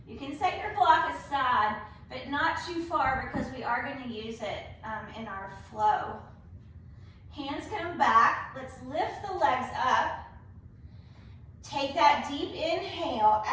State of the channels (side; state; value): both; identical; correlation 1.00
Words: You can set your block aside, but not too far because we are going to use it in our flow. Hands come back. Let's lift the legs up. Take that deep inhale.